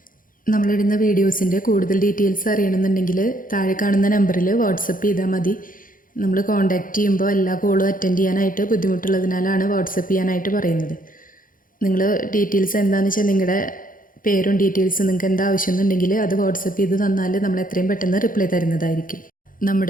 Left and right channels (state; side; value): late; right; 0.40 ms